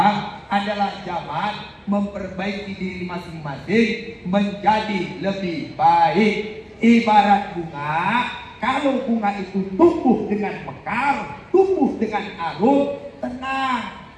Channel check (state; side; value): identical; both; correlation 1.00